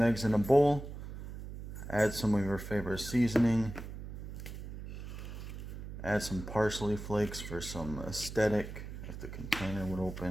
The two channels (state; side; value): noise; right; hum, 9 dB below the sound